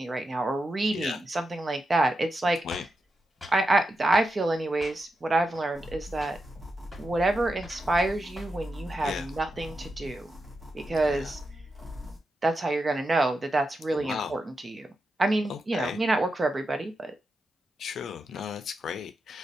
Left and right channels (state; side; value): normal; both; correlation 0.88